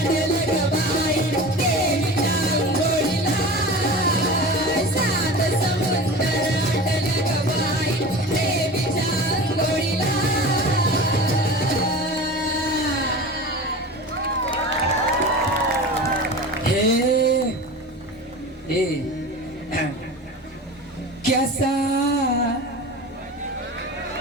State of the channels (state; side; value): normal; both; correlation 0.34